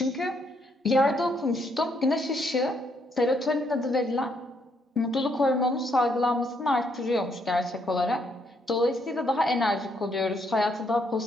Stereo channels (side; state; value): both; normal; correlation 0.73